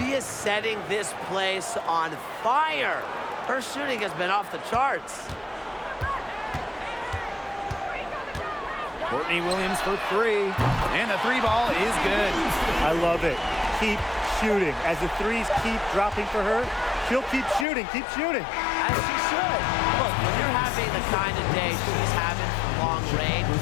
is setting this place on fire. Her shooting has been off the charts. Courtney Williams for 3. And the 3 ball is good. I love it. Keep shooting. As the threes keep dropping for her, she'll keep shooting, keep shooting. As she should. Look, when you're having the kind of day she's having from long range,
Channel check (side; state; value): right; drops out; at 17.7 s